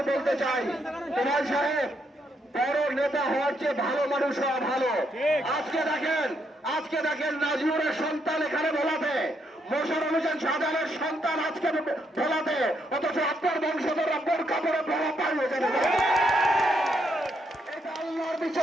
বলতে চাই, তোফায়েল সাহেব বড় নেতা হওয়ার চেয়ে ভালো মানুষ হওয়া ভালো। আজকে দেখেন নাজিউরের সন্তান এখানে ভোলাতে, মোশাররফ হোসেন শাহজাহানের সন্তান আজকে ভোলাতে, অথচ আপনার বংশধররা বোরকা পরে ভোলা পালিয়ে যাবে। এটা আল্লাহর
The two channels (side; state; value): both; normal; correlation 0.76